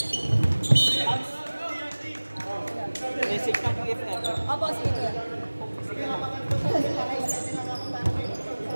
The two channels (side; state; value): both; inverted; correlation -1.00